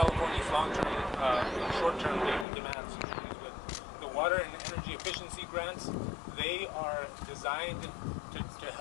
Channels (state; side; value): drops out; right; at 2.5 s